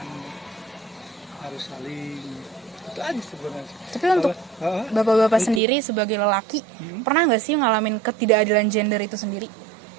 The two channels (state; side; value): drops out; left; at 5.6 s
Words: harus saling. Itu aja sebenarnya. Tapi untuk Hah? Bapak-bapak sendiri sebagai lelaki, pernah nggak sih ngalamin ketidakadilan gender itu sendiri?